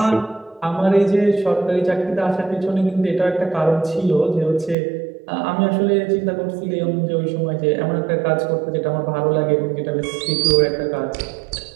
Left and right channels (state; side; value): drops out; left; at 4.8 s